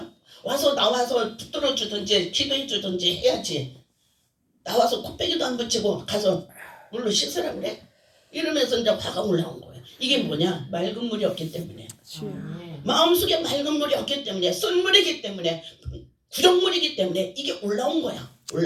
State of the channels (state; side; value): identical; both; correlation 1.00